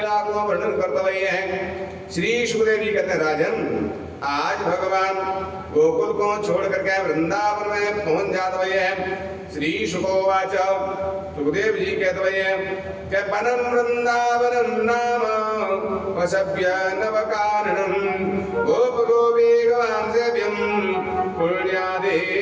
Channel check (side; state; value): both; identical; correlation 1.00